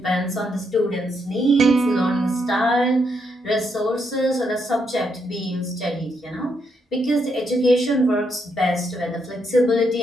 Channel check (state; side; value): normal; both; correlation 0.78